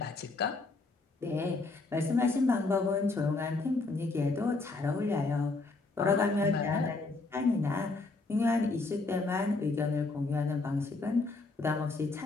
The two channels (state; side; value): quieter; right; 3.5 dB